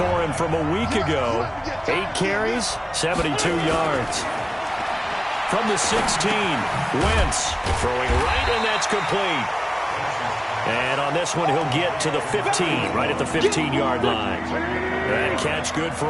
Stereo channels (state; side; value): identical; both; correlation 1.00